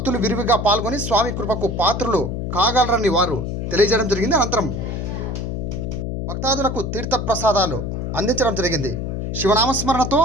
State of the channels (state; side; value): noise; left; hum, 3 dB below the sound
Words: విరివిగా పాల్గొని స్వామి కృపకు పాత్రలు కాగలరని వారు తెలియజేయడం జరిగింది. అనంతరం భక్తాదులకు తీర్థ ప్రసాదాలు అందించడం జరిగింది. శివనామస్మరణతో